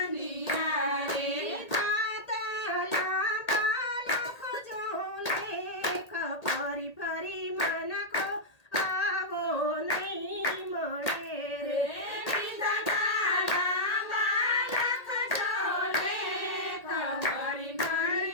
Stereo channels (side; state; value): right; late; 1.8 ms